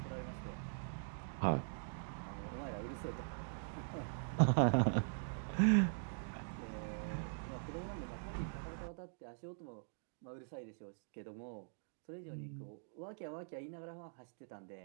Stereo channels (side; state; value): left; silent; digital silence